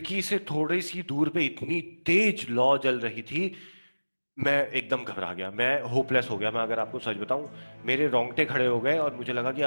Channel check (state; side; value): inverted; both; correlation -1.00